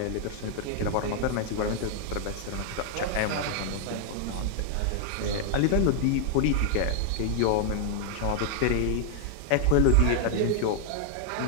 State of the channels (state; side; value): different; both; correlation 0.00